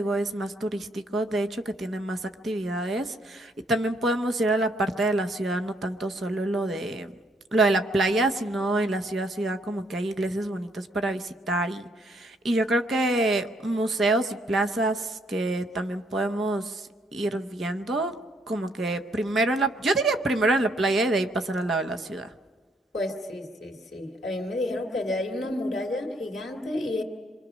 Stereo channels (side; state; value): both; normal; correlation 0.70